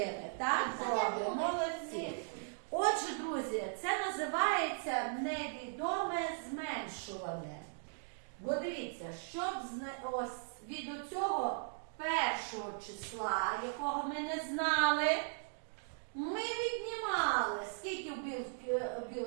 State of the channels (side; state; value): left; silent; digital silence